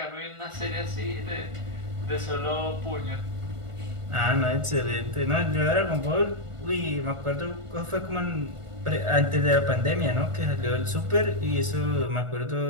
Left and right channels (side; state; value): left; late; 1.4 ms